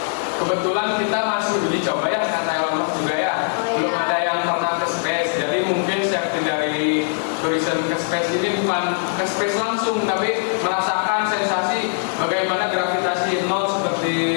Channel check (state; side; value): silent; right; 65 dB below the other